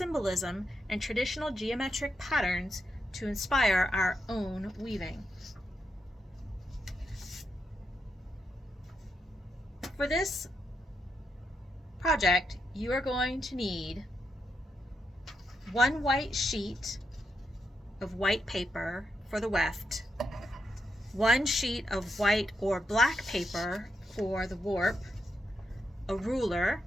and traditional geometric patterns to inspire our own weaving. For this project, you are going to need one white sheet of white paper for the weft, one sheet of white or black paper for the warp, a ruler,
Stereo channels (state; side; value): normal; both; correlation 0.83